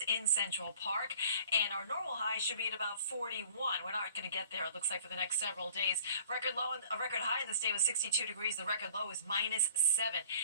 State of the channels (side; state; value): both; inverted; correlation -0.50